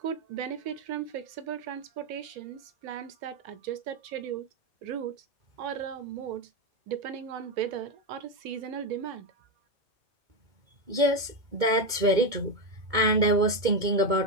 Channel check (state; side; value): late; left; 2.2 ms